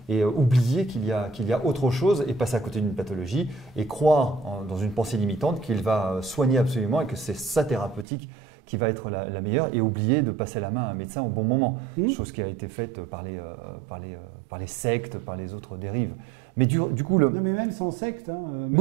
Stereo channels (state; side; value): drops out; left; at 8.1 s